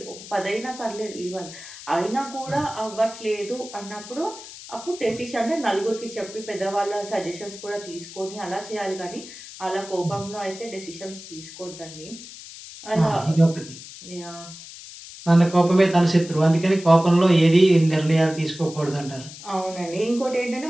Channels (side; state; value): left; noise; hiss, 15 dB below the sound